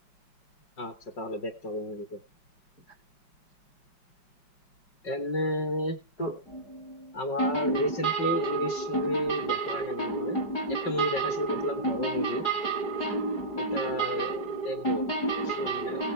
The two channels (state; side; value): late; right; 5.3 ms